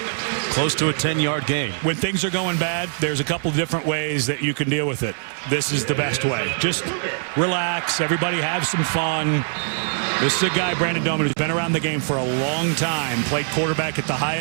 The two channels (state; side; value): silent; left; digital silence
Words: Close to a 10-yard gain. When things are going bad, there's a couple different ways that you can deal with it. This is the best way. Just relax. Everybody have some fun. This is a guy, Brandon Doman, who's been around the game for a long time. Played quarterback at the